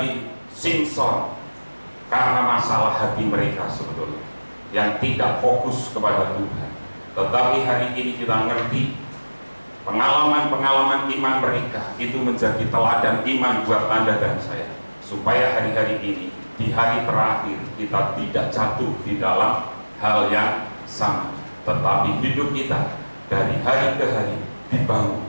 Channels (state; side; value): inverted; both; correlation -1.00